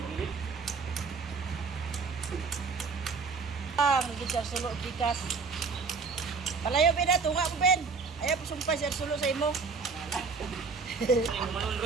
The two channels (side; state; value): left; quieter; 4.8 dB